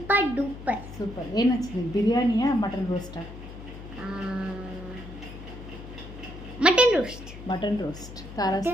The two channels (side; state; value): left; noise; hum, 13 dB below the sound